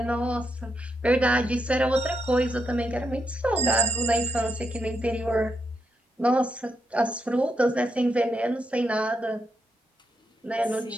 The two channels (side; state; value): both; normal; correlation 0.81